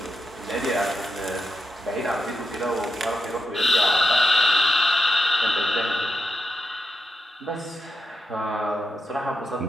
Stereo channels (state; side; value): normal; both; correlation 0.88